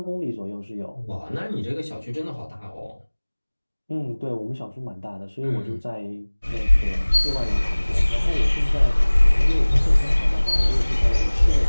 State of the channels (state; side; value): inverted; both; correlation -1.00